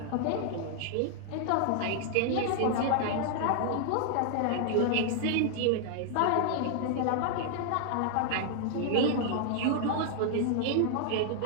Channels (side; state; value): both; different; correlation 0.00